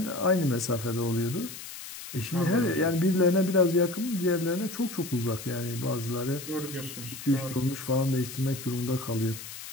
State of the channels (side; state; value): left; noise; hiss, 11 dB below the sound